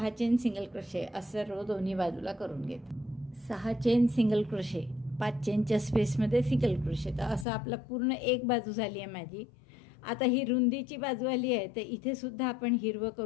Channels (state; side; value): drops out; right; at 7.5 s